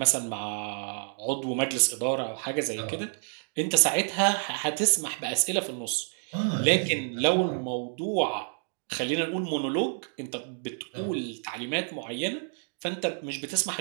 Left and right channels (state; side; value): silent; left; 59 dB below the other